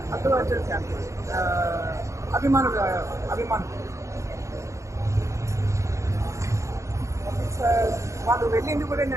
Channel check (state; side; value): late; left; 0.15 ms